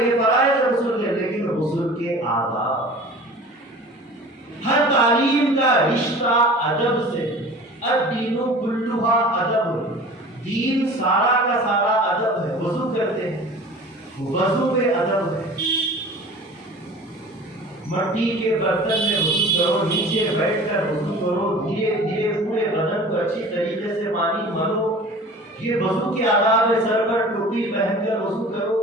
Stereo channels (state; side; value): normal; both; correlation 0.41